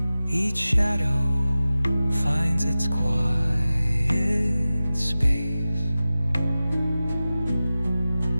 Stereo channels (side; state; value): both; inverted; correlation -0.96